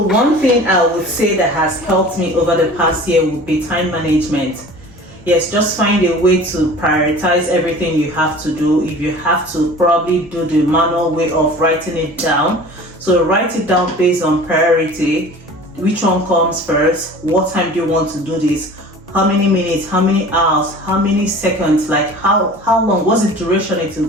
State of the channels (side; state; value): both; normal; correlation 0.42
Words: thing I would say that has helped me over the past year would be time management. Yes, just find a way to prioritize everything you have to do. If you have to, probably do the manual way of writing it down. So write it down based on priority. Which one comes first? What time do you want to do this? How many minutes? How many hours? How many seconds? Like, how long? What's the duration